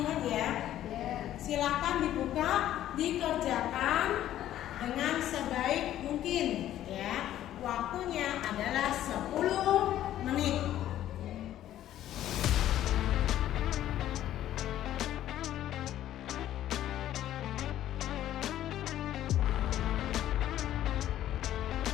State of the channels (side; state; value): right; quieter; 12.5 dB